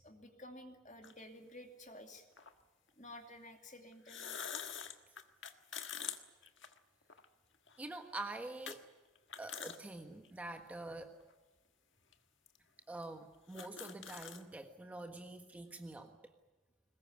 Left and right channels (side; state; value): both; normal; correlation 0.50